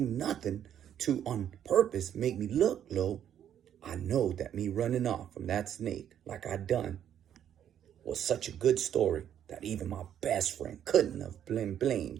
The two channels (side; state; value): left; quieter; 9.9 dB